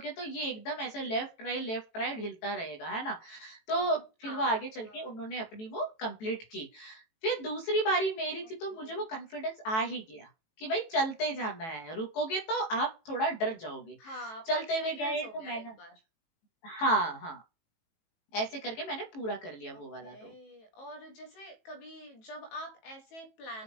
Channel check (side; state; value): right; late; 18 ms